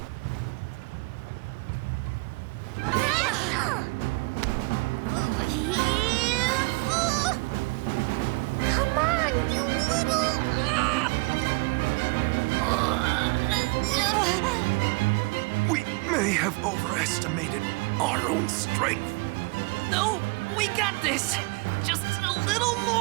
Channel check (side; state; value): left; quieter; 27.2 dB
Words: Come on, you little... We may have overestimated our own strength. No, we got this! Just a little